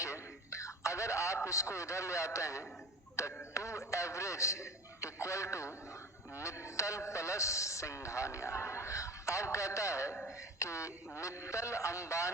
अगर आप इसको इधर ले आते हैं तो 2 average equal to Mittal plus Singhania. अब कहता है कि मित्तल,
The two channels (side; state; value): both; normal; correlation 0.35